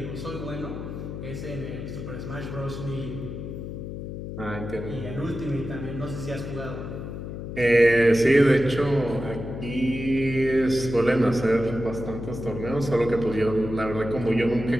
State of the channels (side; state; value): left; noise; hum, 8 dB below the sound